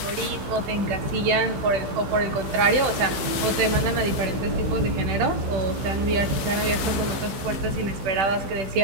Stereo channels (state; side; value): late; left; 15 ms